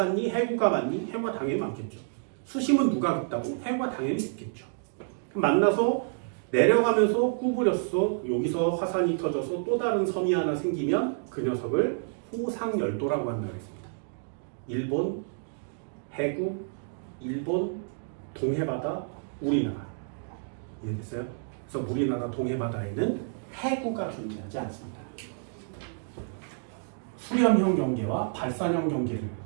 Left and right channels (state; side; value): silent; left; digital silence